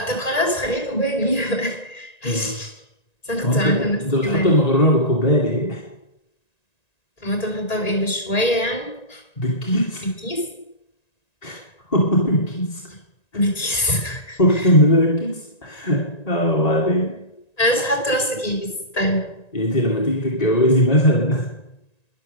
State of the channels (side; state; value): right; late; 1.9 ms